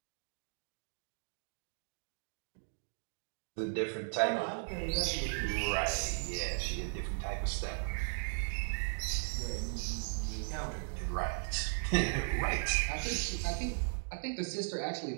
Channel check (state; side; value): silent; left; digital silence